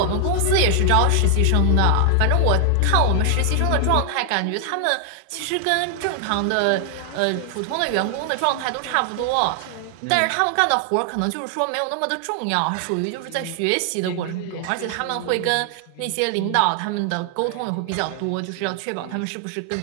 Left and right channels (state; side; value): different; both; correlation 0.00